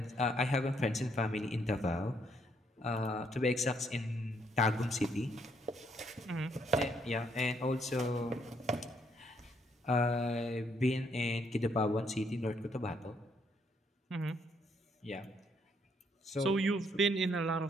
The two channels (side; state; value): both; normal; correlation 0.71